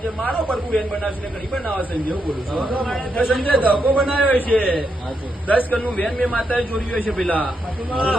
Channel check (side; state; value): both; normal; correlation 0.81